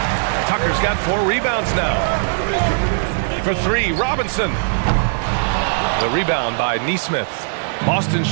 Tucker's got 4 rebounds now. For 3, Robinson. The rebound by Nesmith. Boston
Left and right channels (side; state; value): left; silent; digital silence